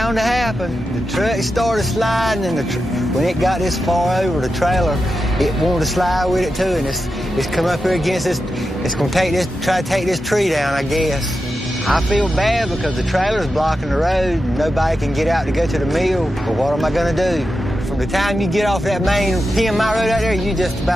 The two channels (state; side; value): normal; both; correlation 0.90